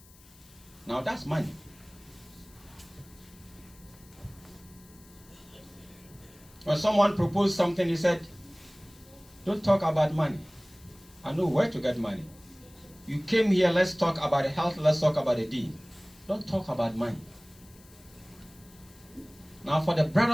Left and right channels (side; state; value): left; noise; hiss, 25 dB below the sound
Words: Now that's money. When someone proposed something, he said, don't talk about money. I know where to get money. You came here, let's talk about health, let's talk about the deen. Don't talk about money. Now for the